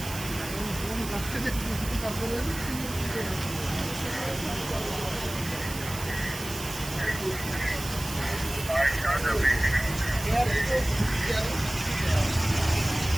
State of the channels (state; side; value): noise; right; hiss, 10 dB below the sound